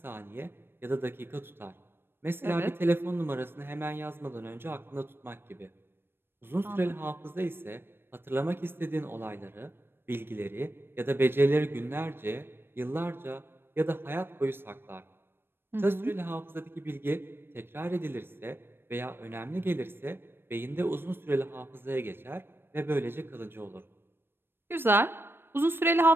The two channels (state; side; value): late; left; 0.10 ms